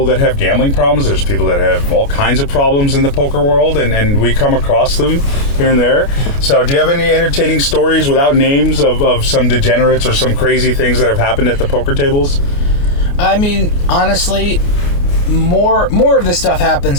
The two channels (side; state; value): right; late; 29 ms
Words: that have gambling problems. There's people that have all kinds of problems in the poker world, and we come across them here and there. So do you have any entertaining stories without names of some degenerates or some crazy things that have happened at the poker tables? I mean, honestly, more of this stuff